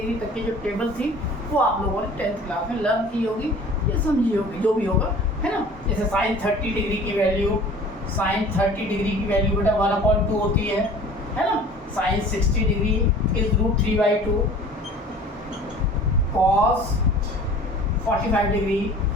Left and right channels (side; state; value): both; normal; correlation 0.45